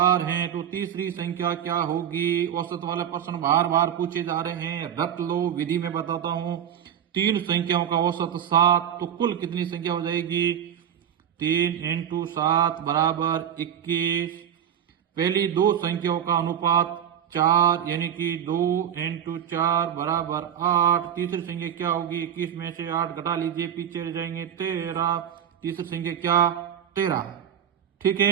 है, तो तीसरी संख्या क्या होगी। औसत वाले प्रश्न बार बार पूछे जा रहे हैं, रट लो, विधि में बताता हूं। 3 संख्याओं का औसत 7, तो कुल कितनी संख्या हो जाएगी 3 × 7 बराबर 21। पहली 2 संख्याओं का अनुपात 4, यानी कि 2 × 4 बराबर 8। तीसरी संख्या क्या होगी, 21 में से 8 घटा लीजिए, पीछे रह जाएंगे 13। तीसरी संख्या क्या 13, ठीक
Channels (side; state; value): left; quieter; 9.3 dB